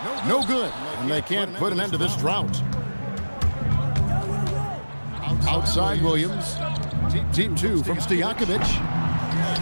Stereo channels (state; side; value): inverted; both; correlation -1.00